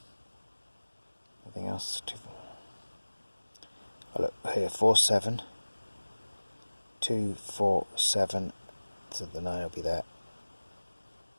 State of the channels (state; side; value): inverted; both; correlation -1.00